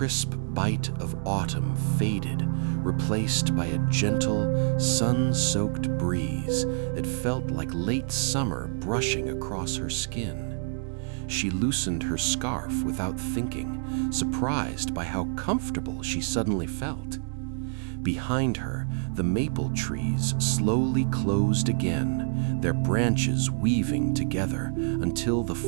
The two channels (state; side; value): silent; left; digital silence